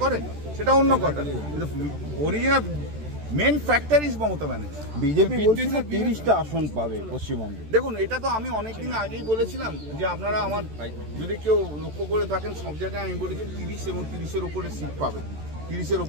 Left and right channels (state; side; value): late; left; 14 ms